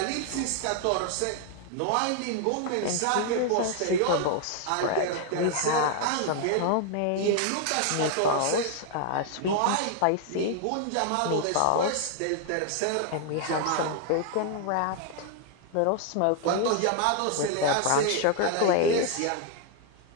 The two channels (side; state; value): both; different; correlation 0.00